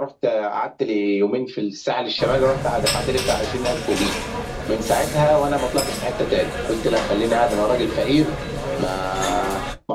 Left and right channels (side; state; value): both; identical; correlation 1.00